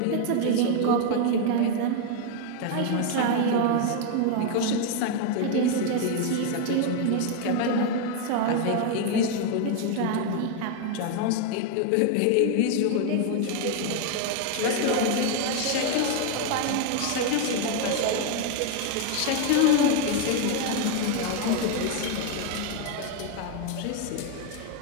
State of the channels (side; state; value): both; different; correlation 0.01